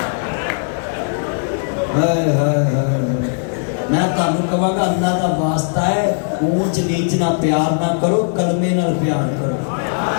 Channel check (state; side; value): silent; right; digital silence